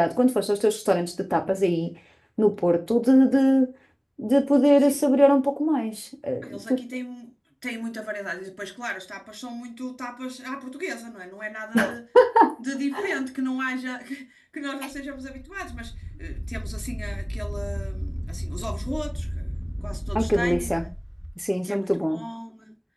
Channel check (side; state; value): both; identical; correlation 1.00